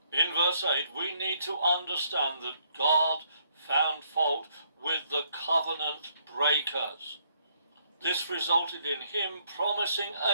In verse 8, we need to understand that God found fault with the covenant breakers. This resulted in him promising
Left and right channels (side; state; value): both; inverted; correlation -0.69